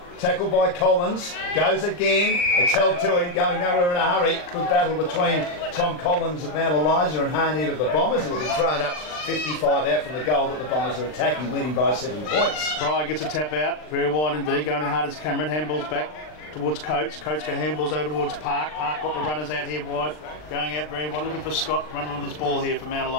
Tackled by Collins. Goes again. It's held to him, going nowhere in a hurry. Good battle between Tom Collins of Mount Eliza and Harnett of the Bombers. It'll be thrown up 55 out from the goal that the Bombers are attacking, leading by 7 points. Pryor gets a tap out, very wide indeed, going in hard as Cameron. Handballs back towards Coates. Coates got handballs over towards Park. Park got the runners out here wide, going out very wide, looking for Scott running with this ball here for Mount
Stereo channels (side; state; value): right; late; 39 ms